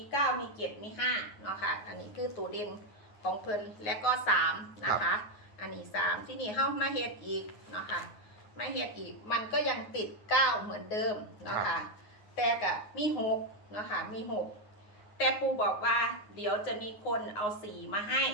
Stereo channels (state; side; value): late; right; 9.5 ms